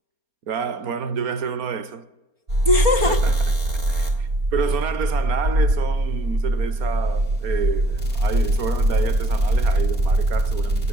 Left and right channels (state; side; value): late; left; 4.3 ms